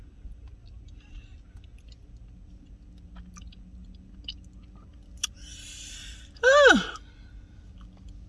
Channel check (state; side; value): identical; both; correlation 1.00